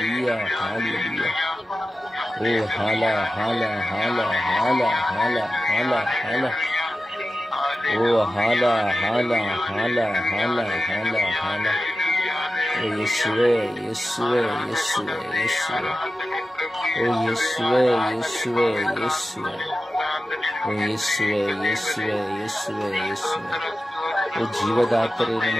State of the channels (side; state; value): both; normal; correlation 0.93